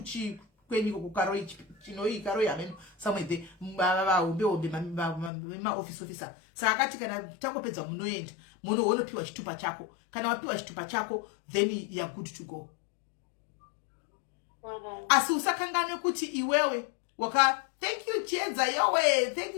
kwenyiko kukaroi chinoi karoi hameno somewhere there vahombe maoffice officer. Saka akati kana tangopedza munoenda munopiwa chitupa chako. Kana wapiwa chitupa chako then you are good to go. Asi usakangane kuti iwewe thank you Chiedza yowe, thank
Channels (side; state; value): right; drops out; at 5.3 s